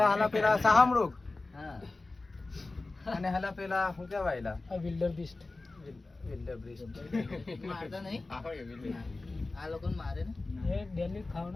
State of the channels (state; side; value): quieter; right; 3.3 dB